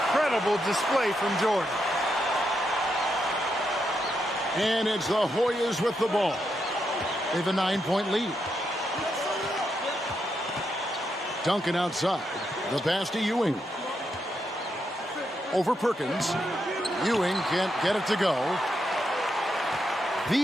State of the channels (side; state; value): both; normal; correlation 0.82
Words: display from Jordan. And it's the Hoyas with the ball. They have a 9-point lead. Duncan outside. The pass to Ewing. Over Perkins. Ewing can't get it to go.